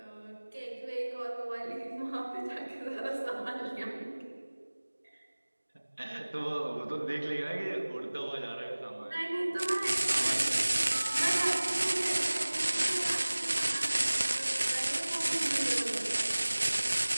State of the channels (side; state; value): both; inverted; correlation -1.00